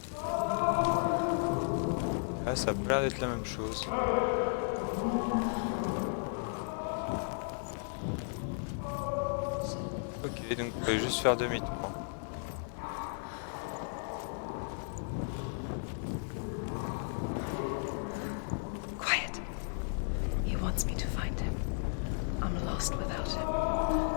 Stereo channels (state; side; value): silent; right; digital silence